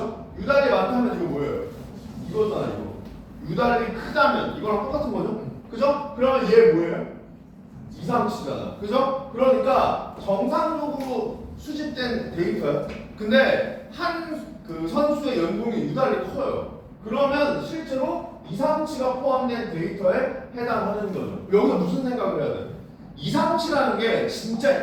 유달리 많다면 이거 뭐예요? 이거잖아, 이거. 유달리 크다면 이거랑 똑같은 거죠? 그죠? 그러면 얘 뭐예요? 이상치잖아. 그죠? 그러니까 정상적으로 수집된 데이터야. 근데 한 그 선수의 연봉이 유달리 커요. 그러면 실제로 이상치가 포함된 데이터에 해당하는 거죠. 여기서 무슨 생각을 해야 돼? 이상치라는 게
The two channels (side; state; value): both; identical; correlation 1.00